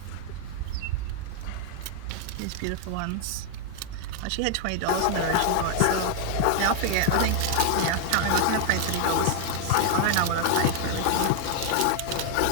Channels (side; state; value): both; different; correlation 0.00